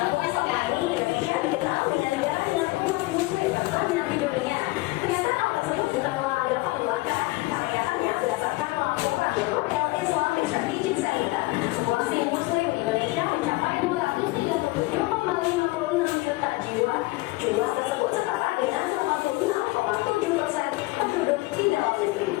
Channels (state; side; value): quieter; right; 22.0 dB